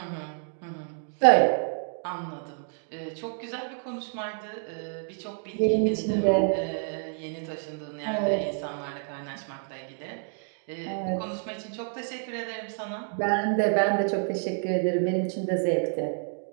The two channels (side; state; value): left; silent; 57 dB below the other